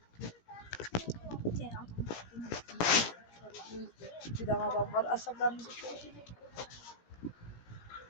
Bir tane adam var asablarımızı çok.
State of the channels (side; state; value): right; late; 17 ms